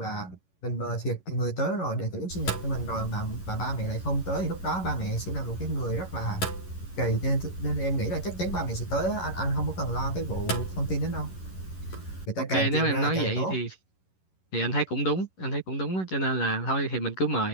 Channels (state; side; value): late; right; 11 ms